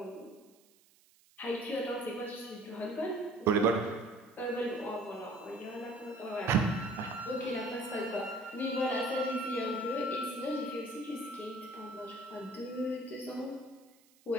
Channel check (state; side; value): noise; right; hiss, 30 dB below the sound